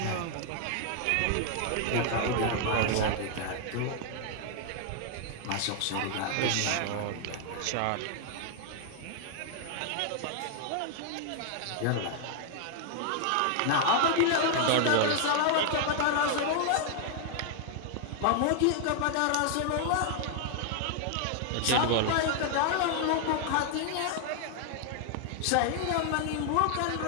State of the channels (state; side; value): different; both; correlation 0.00